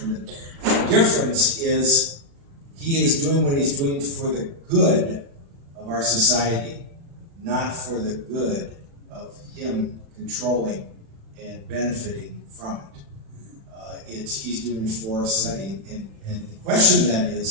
the difference is he is doing what he's doing for the good of our society, not for the good of him controlling and benefiting from it. He's doing it for us, studying. And the question then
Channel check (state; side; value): late; left; 36 ms